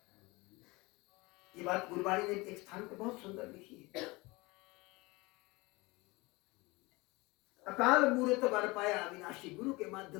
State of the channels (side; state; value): right; quieter; 23.5 dB